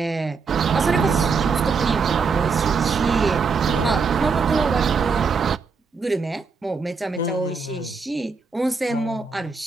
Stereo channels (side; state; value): left; quieter; 4.9 dB